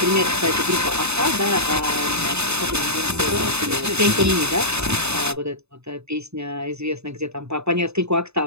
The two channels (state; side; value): late; left; 0.80 ms